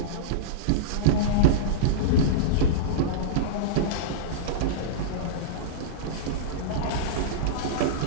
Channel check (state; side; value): different; both; correlation -0.04